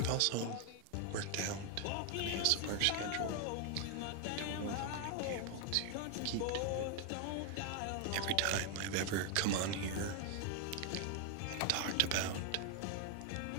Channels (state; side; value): different; both; correlation 0.01